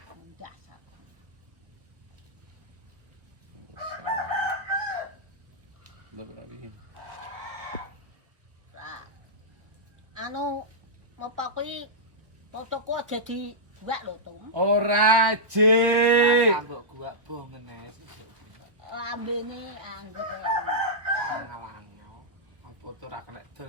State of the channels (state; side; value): late; left; 1.1 ms